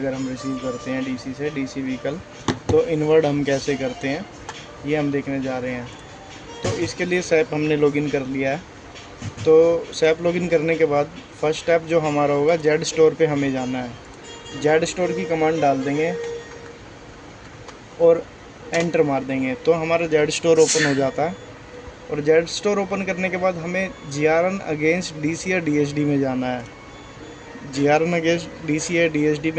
हम रिसीव करते हैं डीसी से, डीसी व्हीकल, तो इनवर्ड हम कैसे करते हैं ये हम देखने जा रहे हैं। तो इसके लिए सैप हमने लॉगिन कर लिया है। तो सैप लॉगिन करने के बाद फर्स्ट स्टेप जो हमारा होगा, जेड स्टोर पे हमें जाना है। जेड स्टोर की कमांड डाल देंगे और एंटर मार देंगे तो हमारा जेड स्टोर ओपन हो जाता है। और जेड स्टोर ओपन करने के बाद हमें जीआरएन अगेंस्ट डीसी या डीएसडी में जाना है। जीआरएन अगेंस्ट डीसी या डीएसडी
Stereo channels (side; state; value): both; identical; correlation 1.00